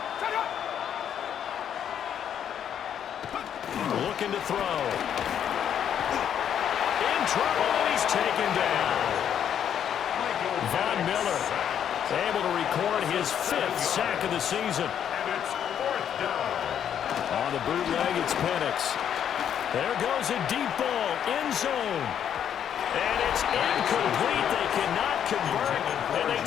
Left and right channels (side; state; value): right; quieter; 9.1 dB